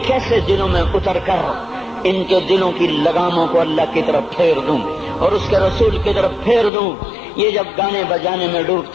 کیسے دلوں میں اتر کر ان کے دلوں کی لگاموں کو اللہ کی طرف پھیر دوں اور اس کے رسول کی طرف پھیر دوں۔ یہ جب گانے بجانے میں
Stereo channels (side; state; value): right; drops out; at 6.7 s